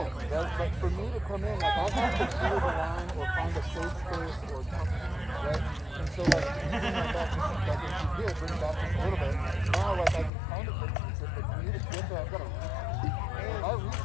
Right? But for me to come in, like I have to clear the line or find a safe space or something, right? And so like, you bring that back just like if you did, bring it back just a little bit. Now like I can kind of hit you, but for me to get there, I've got to reach. And if I reach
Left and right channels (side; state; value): right; drops out; at 10.3 s